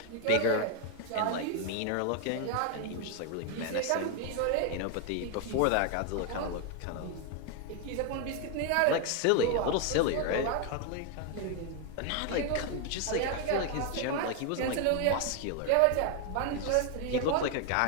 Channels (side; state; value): both; different; correlation 0.01